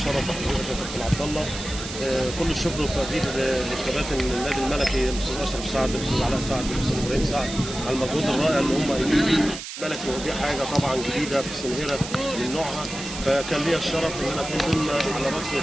بحضرتك يا كابتن عبد الله. كل الشكر والتقدير لكباتن النادي الملكي، الاستاذ اشرف سعد، الاستاذ علاء سعد، الاستاذ ابراهيم سعد، على المجهود الرائع اللي هم قايمين بيه. الملكي ودي حاجه طبعا جديده في سنهره من نوعها، فكان لي الشرف ان انا اكون ضمن على راس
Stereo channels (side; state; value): right; noise; hiss, 9 dB below the sound